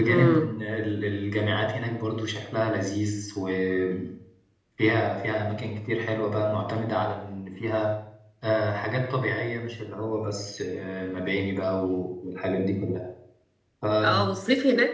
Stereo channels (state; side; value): identical; both; correlation 1.00